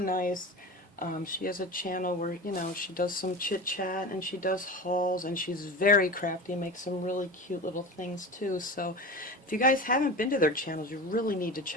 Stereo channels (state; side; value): normal; both; correlation 0.29